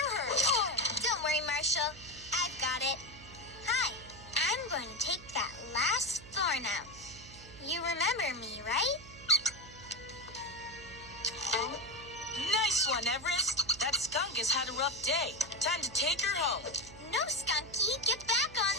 her? Oh. Don't worry, Marshall. I've got it. Hi, I'm going to take that last thorn out. You remember me, right? Nice one, Everest. That skunk has had a rough day. Time to take her home. No, Skunky, get back on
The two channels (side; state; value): right; noise; hum, 18 dB below the sound